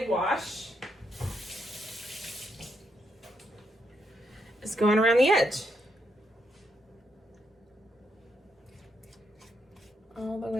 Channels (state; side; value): normal; both; correlation 0.79